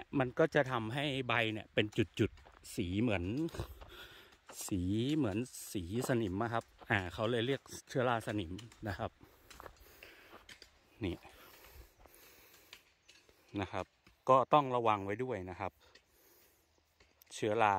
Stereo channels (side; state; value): both; identical; correlation 1.00